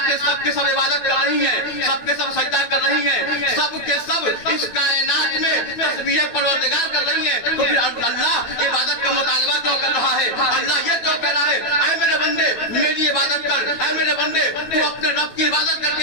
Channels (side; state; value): right; late; 9.1 ms